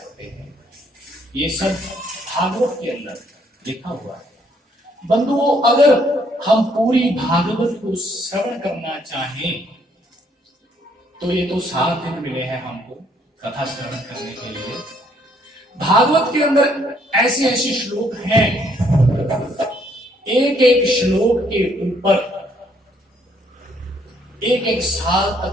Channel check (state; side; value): normal; both; correlation 0.67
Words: हैं। ये सब भागवत के अंदर लिखा हुआ है। बंधुओं, अगर हम पूरी भागवत को श्रवण करना चाहें तो ये तो 7 दिन मिले हैं हमको कथा श्रवण करने के लिए। भागवत के अंदर ऐसे ऐसे श्लोक हैं, एक एक श्लोक के ऊपर एक एक साल